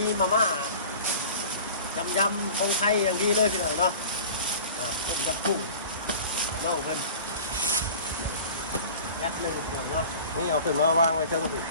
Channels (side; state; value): both; inverted; correlation -0.41